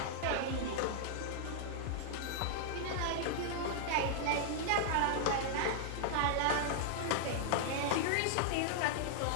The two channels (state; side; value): different; both; correlation -0.01